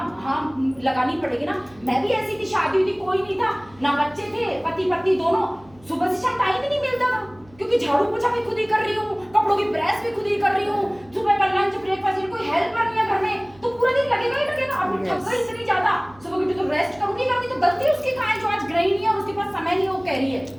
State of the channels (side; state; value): right; noise; hum, 26 dB below the sound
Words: लगानी पड़ेगी ना। मैं भी ऐसी थी, शादी हुई थी, कोई नहीं था, ना बच्चे थे, पति पत्नी दोनों, सुबह से शाम टाइम ही नहीं मिलता था, क्योंकि झाड़ू पोछा भी खुद ही कर रही हूँ, कपड़ों की प्रेस भी खुद ही कर रही हूँ, सुबह का लंच ब्रेकफास्ट, कोई हेल्पर नहीं है घर में, तो पूरा दिन लगेगा ही लगेगा। अब थक गई इतनी ज्यादा, सुबह उठी तो रेस्ट करूंगी, तो गलती उसकी कहाँ है जो आज गृहिणी है और उसके पास समय नहीं, वो कह रही है,